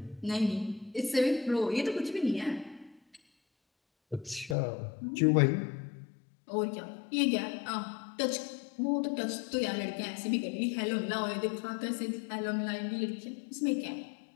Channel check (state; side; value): drops out; right; at 4.5 s